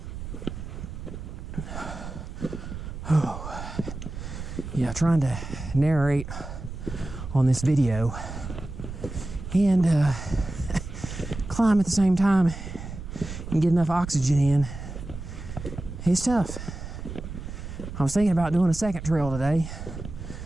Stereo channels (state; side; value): noise; right; rumble, 9 dB below the sound